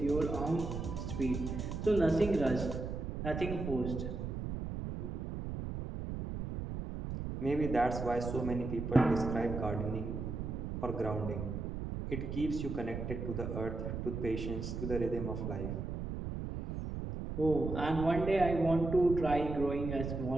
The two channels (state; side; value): noise; right; rumble, 5 dB below the sound